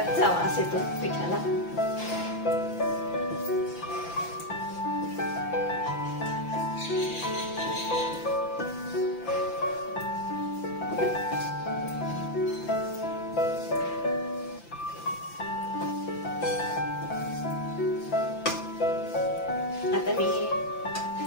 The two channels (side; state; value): right; late; 5.9 ms